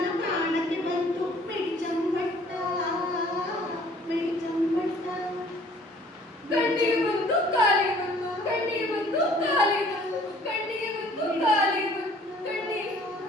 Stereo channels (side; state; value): both; normal; correlation 0.55